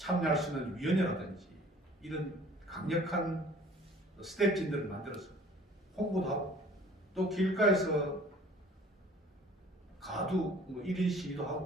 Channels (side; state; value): both; normal; correlation 0.51